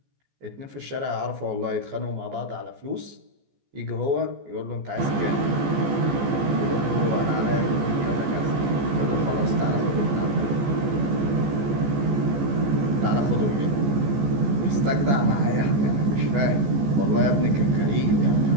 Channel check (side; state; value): left; late; 14 ms